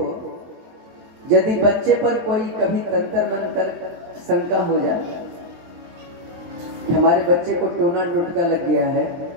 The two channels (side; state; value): left; late; 23 ms